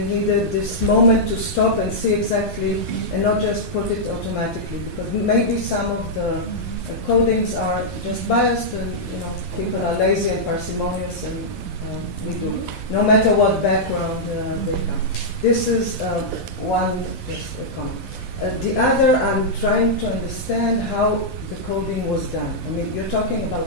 needed this moment to stop and see exactly, and not just put it automatically, because maybe some of the codings are just biased, and people are lazy and parsimonious, and we do, no matter what background they come. This is one, just a comment. The other, I'm trying to understand how the coding was done. I mean, you're talking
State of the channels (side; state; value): right; late; 12 ms